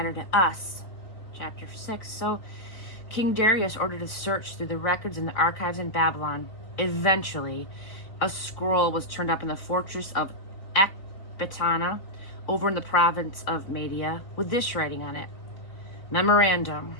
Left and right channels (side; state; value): right; late; 3.8 ms